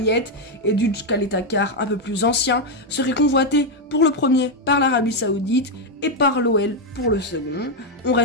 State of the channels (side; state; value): both; normal; correlation 0.03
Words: et Dutch Kaletakar un peu plus ancien, seraient convoités pour le premier par l'Arabie Saoudite et par l'OL pour le second. On